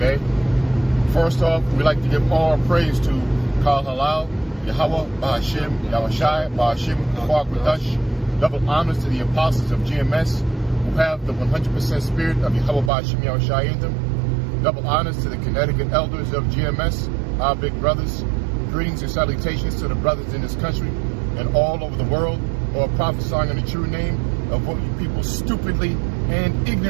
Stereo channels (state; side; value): drops out; left; at 12.9 s